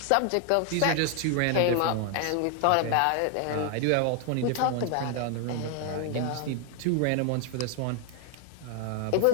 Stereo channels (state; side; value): different; both; correlation 0.01